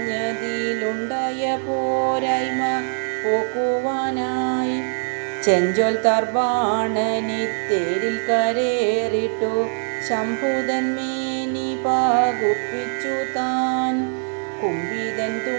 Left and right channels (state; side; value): silent; left; digital silence